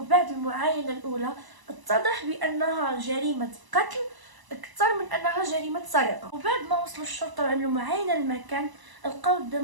المعاينه الاولى اتضح بانها جريمه قتل اكثر من انها جريمه سرقه. وبعد ما وصلوا الشرطه وعملوا معاينه للمكان، لقاو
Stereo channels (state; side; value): late; left; 1.0 ms